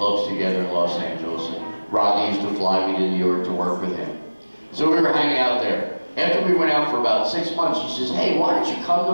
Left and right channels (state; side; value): inverted; both; correlation -1.00